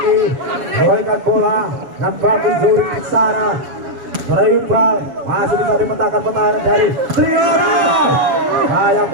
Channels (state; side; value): late; left; 7.2 ms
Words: memberikan bola dan bagus Zuri di sana. Iqbal masih bisa dimentangkan pertahanan dari Triano. Sayang